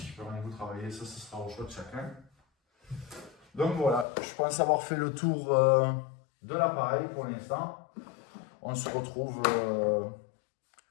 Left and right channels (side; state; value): right; drops out; at 4.0 s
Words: Permettez-vous de travailler, ça sera au choix de chacun. Donc voilà, je pense avoir fait le tour de l'appareil pour l'instant. On se retrouve